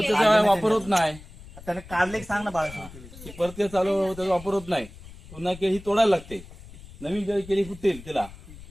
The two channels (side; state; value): left; noise; rumble, 17 dB below the sound